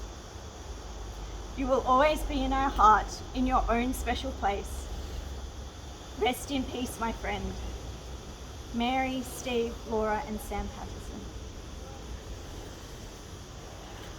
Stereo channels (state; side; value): identical; both; correlation 1.00